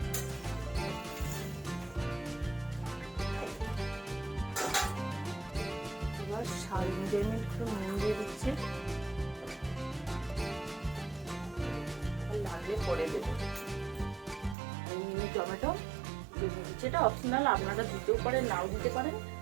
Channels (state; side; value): drops out; left; at 14.6 s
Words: স্বাদ অনুযায়ী একটু নুন দিয়ে দিচ্ছি, লাগলে পরে দেবো। মিনি টমেটো দিয়ে দিচ্ছি, এটা অপশনাল, আপনারা দিতেও পারেন নাও দিতে পারেন,